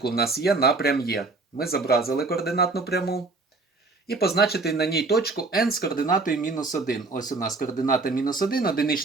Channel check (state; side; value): quieter; left; 3.6 dB